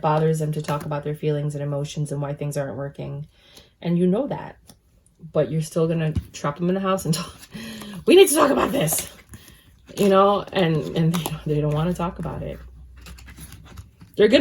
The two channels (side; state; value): both; identical; correlation 1.00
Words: bothers them to talk about their feelings and emotions and why things aren't working. And you know that. But you're still going to trap them in the house and talk. We need to talk about this. You know, and they don't want to talk about it. They're